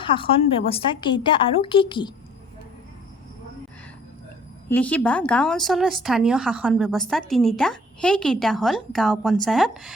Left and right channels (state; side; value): normal; both; correlation 0.53